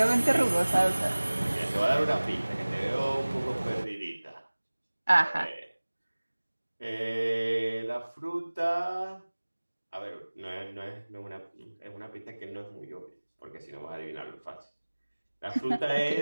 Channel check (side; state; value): both; inverted; correlation -1.00